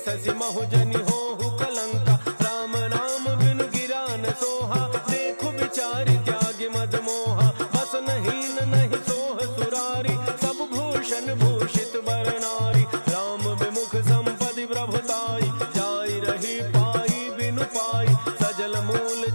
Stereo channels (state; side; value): inverted; both; correlation -1.00